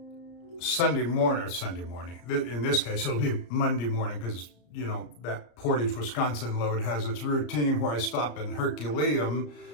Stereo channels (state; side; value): late; right; 34 ms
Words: Sunday morning. In this case, it'll be Monday morning, because, that Portage, Wisconsin load has its routine where I stop in Herculaneum